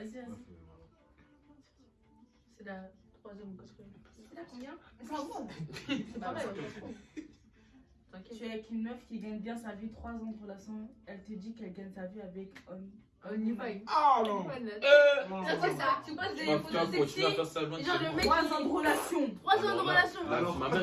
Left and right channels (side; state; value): both; identical; correlation 1.00